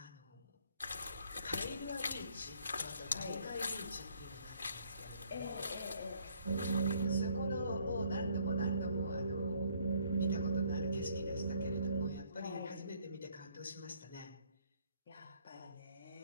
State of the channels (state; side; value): inverted; both; correlation -0.65